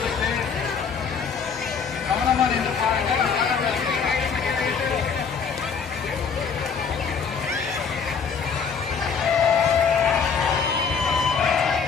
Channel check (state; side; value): quieter; right; 6.0 dB